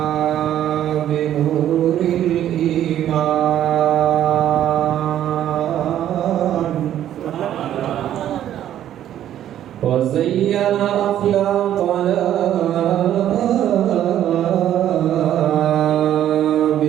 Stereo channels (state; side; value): quieter; left; 11.4 dB